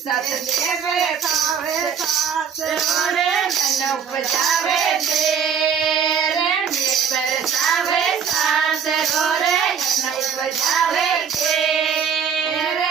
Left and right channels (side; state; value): left; quieter; 7.3 dB